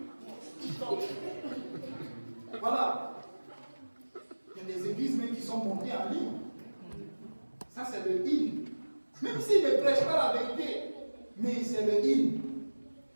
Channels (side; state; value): both; inverted; correlation -1.00